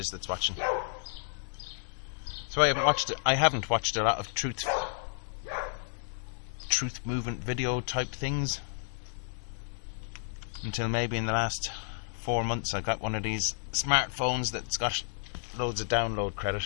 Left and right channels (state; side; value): silent; right; digital silence